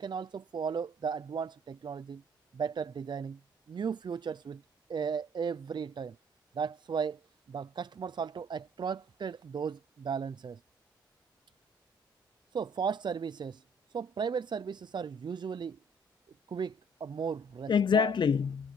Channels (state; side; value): normal; both; correlation 0.59